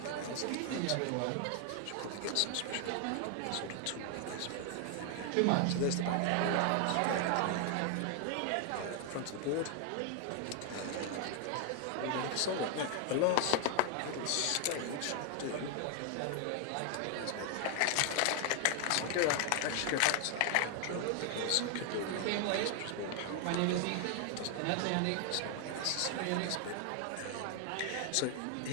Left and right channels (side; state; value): both; different; correlation 0.00